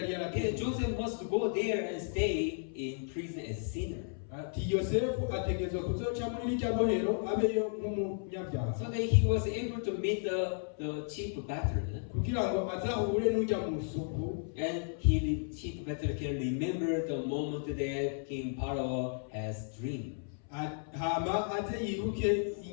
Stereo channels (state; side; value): silent; right; 55 dB below the other